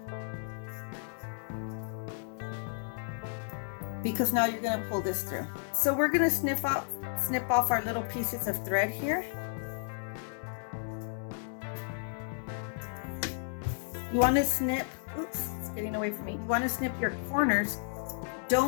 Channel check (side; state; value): right; silent; 56 dB below the other